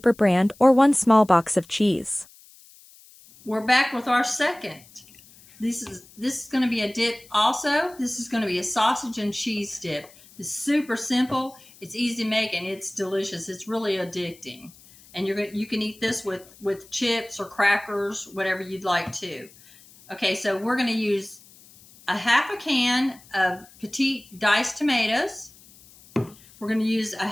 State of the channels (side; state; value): left; noise; hiss, 24 dB below the sound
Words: brand or 1 small box of cheese. We're back with our second. This is going to be a dip also. This is going to be a sausage and cheese dip. It's super simple. It's easy to make and it's delicious. It's really addicting. And you can eat this with chips or crackers, whatever you'd like to. Okay, so we're going to use 1/2 can of Petite diced tomatoes. We're going to use